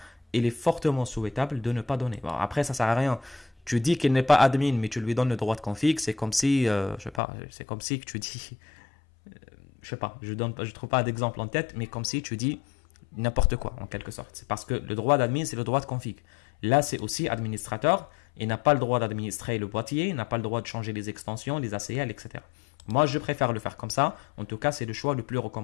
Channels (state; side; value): drops out; right; at 7.2 s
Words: il est fortement souhaitable de ne pas donner. Bon, après, ça sert à rien. Tu dis qu'il n'est pas admin, mais tu lui donnes le droit de config. C'est comme si, je sais pas, c'est comme si que tu dis... je sais pas, je trouve pas d'exemple en tête, mais comme si tu dis n'importe quoi en quelque sorte. C'est parce que le droit d'admin, c'est le droit de config. Là, c'est aussi administrateur. Il n'a pas le droit d'administrer le boîtier, il n'a pas le droit de changer les extensions, les ACL, etc. Moi, je préfère le faire comme ça. En tout cas, c'est le choix le plus